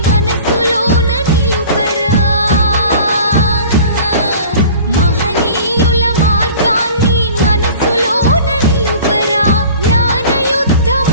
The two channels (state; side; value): inverted; both; correlation -0.44